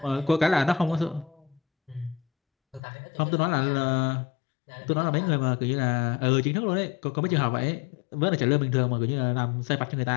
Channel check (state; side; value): drops out; right; at 2.8 s